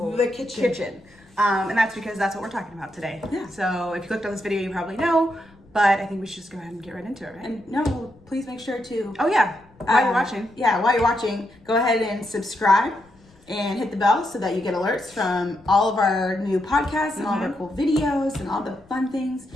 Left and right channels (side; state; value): left; noise; rumble, 29 dB below the sound